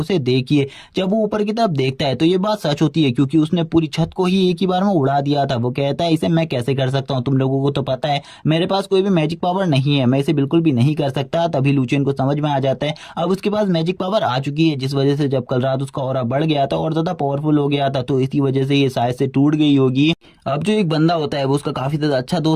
देखिए। जब वो ऊपर की तरफ देखता है तो ये बात सच होती है क्योंकि उसने पूरी छत को ही एक ही बार में उड़ा दिया था। वो कहता है इसे मैं कैसे कर सकता हूँ, तुम लोगों को तो पता है मेरे पास कोई भी मैजिक पावर नहीं है, मैं इसे बिल्कुल भी नहीं कर सकता। तभी लुचेन को समझ में आ जाता है अब उसके पास मैजिक पावर आ चुकी है, जिस वजह से जब कल रात उसका ऑरा बढ़ गया था और ज्यादा पावरफुल हो गया था तो इसी वजह से ये शायद से टूट गई होगी। अब जो एक बंदा होता है वो उसका काफी ज्यादा अच्छा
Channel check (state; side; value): identical; both; correlation 1.00